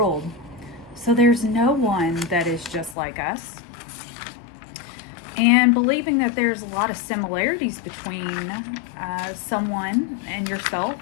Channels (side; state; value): right; drops out; at 3.0 s